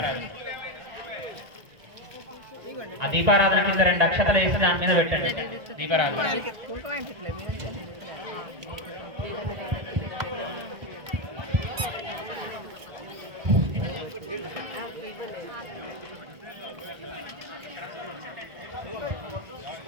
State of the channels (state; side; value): late; left; 1.8 ms